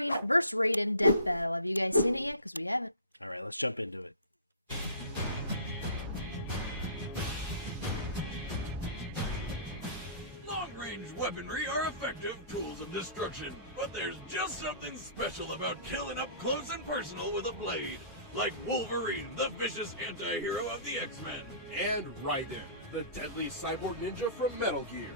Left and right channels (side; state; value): both; inverted; correlation -0.41